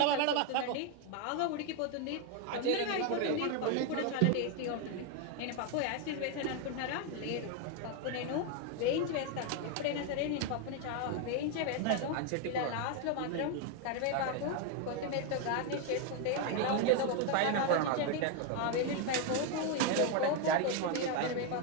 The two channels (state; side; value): different; both; correlation 0.01